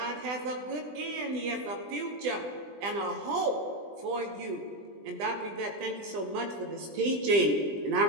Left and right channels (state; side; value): late; left; 20 ms